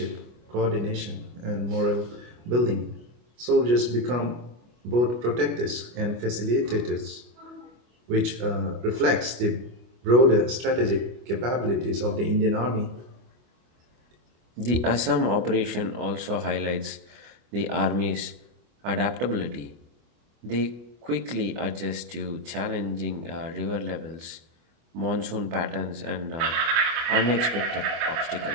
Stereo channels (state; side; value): late; left; 25 ms